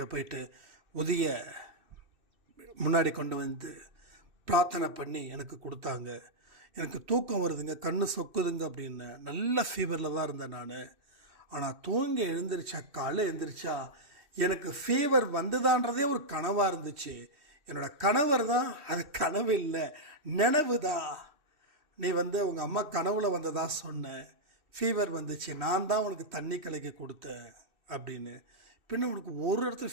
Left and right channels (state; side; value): late; left; 3.1 ms